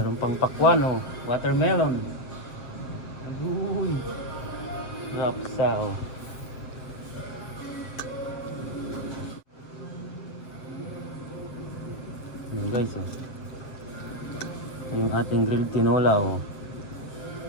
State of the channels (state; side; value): late; right; 7.6 ms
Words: pang pakwan oh. Watermelon. Agoy. Rapsa oh. Yan guys oh. Yung ating grilled tinola oh.